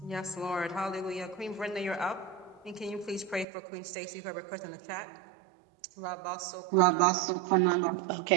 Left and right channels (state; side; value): drops out; left; at 3.5 s